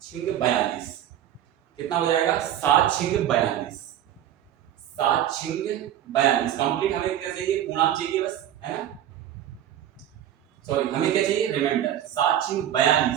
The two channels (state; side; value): quieter; left; 11.3 dB